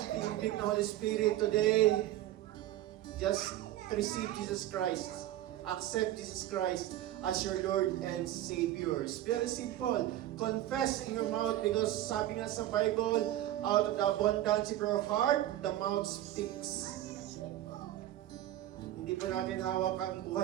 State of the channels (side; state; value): left; quieter; 13.8 dB